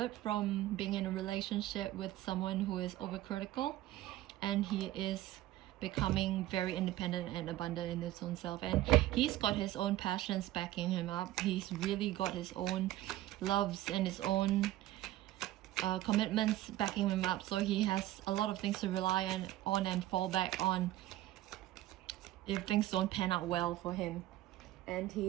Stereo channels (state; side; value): quieter; left; 15.2 dB